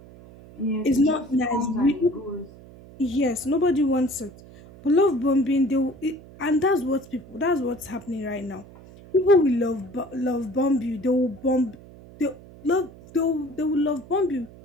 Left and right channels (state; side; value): noise; right; hum, 20 dB below the sound